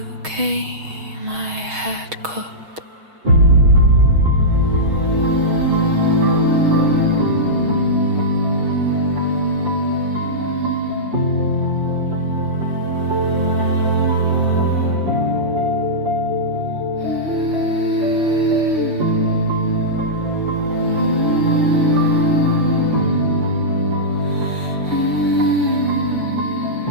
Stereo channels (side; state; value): left; late; 6.3 ms